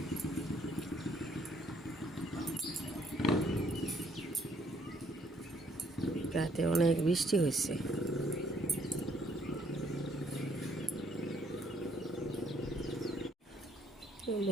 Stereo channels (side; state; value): both; normal; correlation 0.67